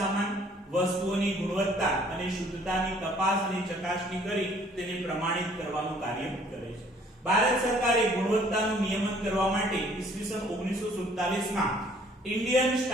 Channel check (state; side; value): normal; both; correlation 0.58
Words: વસ્તુઓની ગુણવત્તા અને શુદ્ધતાની તપાસ અને ચકાસણી કરી તેને પ્રમાણિત કરવાનું કાર્ય કરે છે. ભારત સરકારે ગુણવત્તાનું નિયમન કરવા માટે ઈસવીસન 1947 માં ઇન્ડિયન